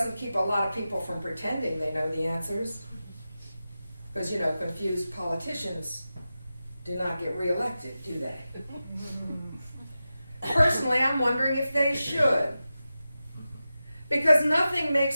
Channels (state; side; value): inverted; both; correlation -0.93